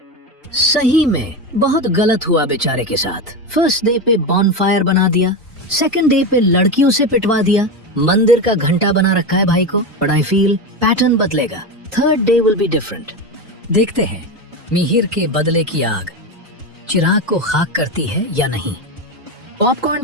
सही में बहुत गलत हुआ बेचारे के साथ। फर्स्ट डे पे बॉनफायर बना दिया, सेकंड डे पे लड़कियों से पिटवा दिया, मंदिर का घंटा बना रखा है भाई को। बट आई फील पैटर्न बदलेगा। Third day will be different. देखते हैं मिहिर के बदले की आग चिराग को खाक करती है या नहीं। पॉपकॉर्न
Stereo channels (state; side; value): normal; both; correlation 0.17